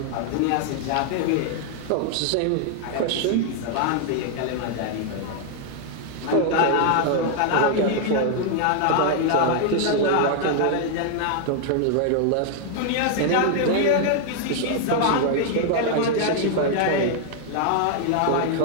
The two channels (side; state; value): both; different; correlation 0.00